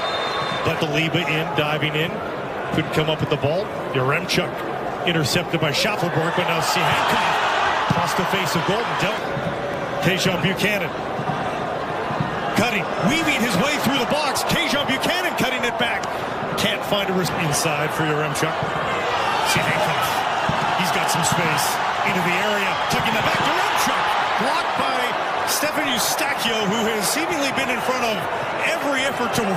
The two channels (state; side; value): identical; both; correlation 1.00